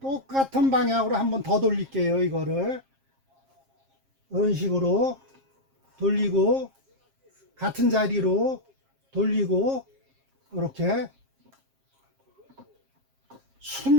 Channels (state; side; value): late; left; 7.5 ms